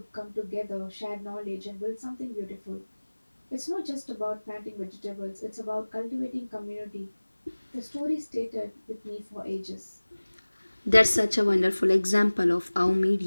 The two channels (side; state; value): both; inverted; correlation -1.00